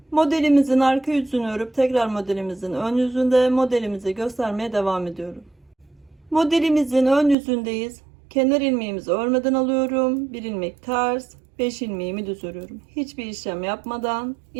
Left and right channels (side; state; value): left; drops out; at 7.4 s